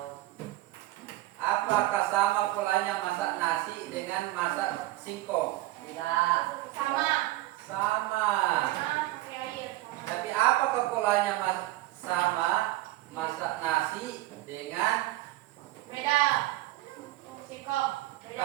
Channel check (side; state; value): left; quieter; 17.2 dB